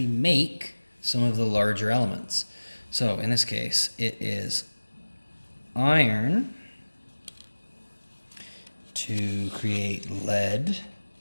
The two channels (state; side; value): inverted; both; correlation -1.00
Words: make some of the larger elements. So in this case, it is iron to create lead